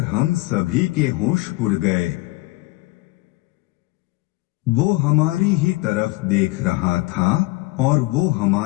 हम सभी के होश उड़ गए। वो हमारी ही तरफ देख रहा था और वो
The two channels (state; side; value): quieter; right; 21.4 dB